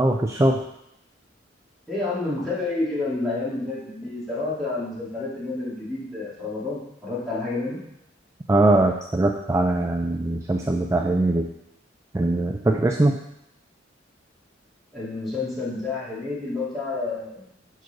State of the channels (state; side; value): normal; both; correlation 0.75